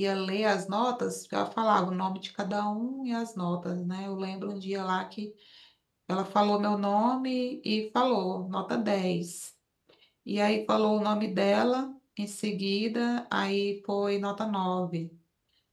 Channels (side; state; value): both; identical; correlation 1.00